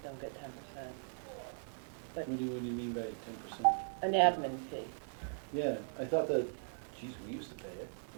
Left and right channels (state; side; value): silent; left; digital silence